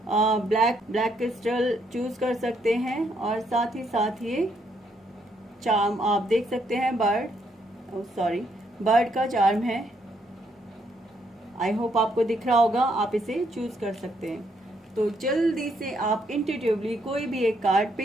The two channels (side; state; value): both; normal; correlation 0.73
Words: ब्लैक क्रिस्टल चूज कर सकते हैं, और साथ ही साथ ये चार्म आप देख सकते हैं, बर्ड का चार्म है। आई होप आपको दिख रहा होगा, आप इसे चूज कर सकते हैं। तो जल्दी से आप इंट्यूटिवली कोई भी एक कार्ड